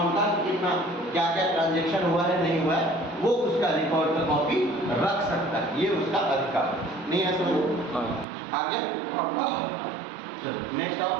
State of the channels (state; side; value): drops out; left; at 8.2 s